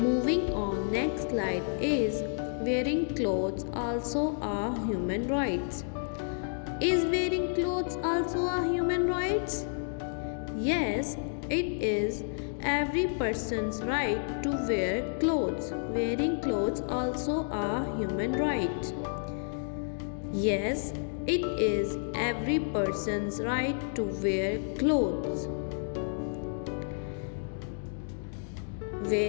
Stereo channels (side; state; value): right; silent; digital silence